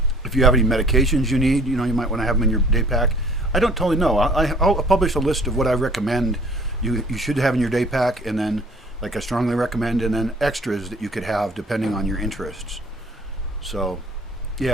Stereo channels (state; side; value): normal; both; correlation 0.53